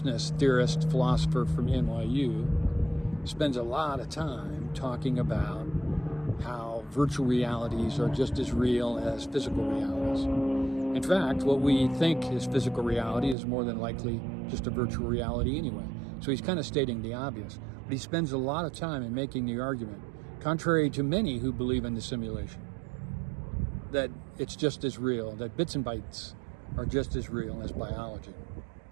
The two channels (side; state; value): left; drops out; at 13.4 s